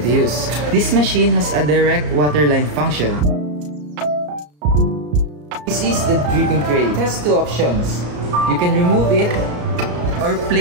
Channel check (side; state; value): left; late; 34 ms